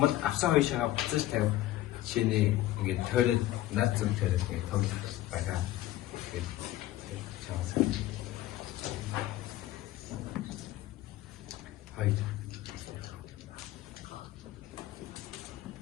бол авсан хоёр шагаа буцаж тавих жишээний ингээд тойрол над зүг тойрол ингээд тоглох байгаа.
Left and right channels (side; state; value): right; quieter; 15.1 dB